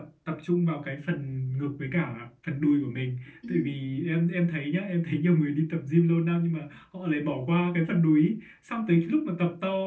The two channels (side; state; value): both; identical; correlation 1.00